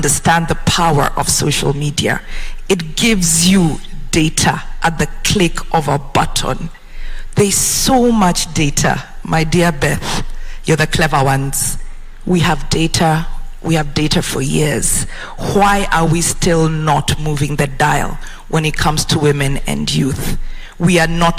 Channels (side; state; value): both; identical; correlation 1.00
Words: the power of social media, it gives you data at the click of a button. There's so much data, my dear Beth. You're the clever ones. We have data We have data for years. Why are we still not moving the dial when it comes to women and youth? We are